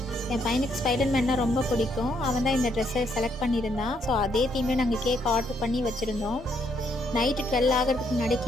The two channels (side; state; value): both; normal; correlation 0.73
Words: என் பையனுக்கு ஸ்பைடர்மேன்னா ரொம்ப பிடிக்கும். அவன் தான் இந்த ட்ரெஸ்ஸை செலக்ட் பண்ணியிருந்தான். ஸோ அதே தீம்லேயே நாங்கள் கேக் ஆர்டர் பண்ணி வச்சுருந்தோம். நைட்டு 12 ஆகிறதுக்கு முன்னாடி